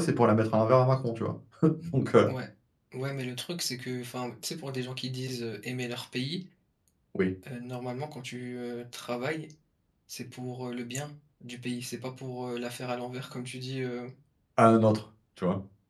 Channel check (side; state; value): both; identical; correlation 1.00